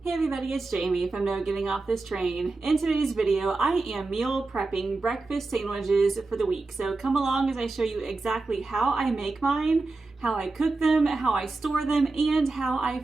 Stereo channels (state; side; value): quieter; left; 3.5 dB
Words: Hey everybody, it's Jamie from No Getting Off This Train. In today's video, I am meal prepping breakfast sandwiches for the week. So come along as I show you exactly how I make mine, how I cook them, how I store them, and how